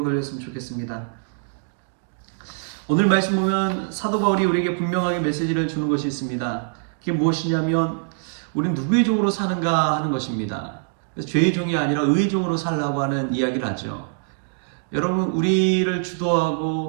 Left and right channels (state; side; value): silent; left; digital silence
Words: 돌렸으면 좋겠습니다. 오늘 말씀 보면 사도 바울이 우리에게 분명하게 메시지를 주는 것이 있습니다. 그게 무엇이냐면 우리는 누구의 종으로 사는가 하는 것입니다. 그래서 죄의 종이 아니라 의의 종으로 살라고 하는 이야기를 하죠. 여러분, 우리를